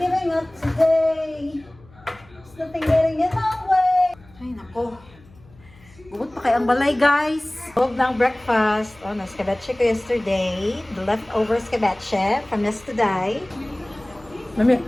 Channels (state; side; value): noise; left; hum, 26 dB below the sound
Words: up today. There's nothing getting in my way. Ay nako. Bukod pa kay ang balay guys. Huwag ng breakfast. Oh, na-escabeche ko yesterday. The leftover escabeche from yesterday. Mami.